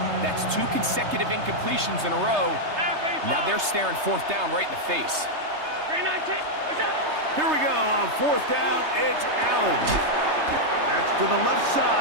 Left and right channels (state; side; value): late; left; 3.3 ms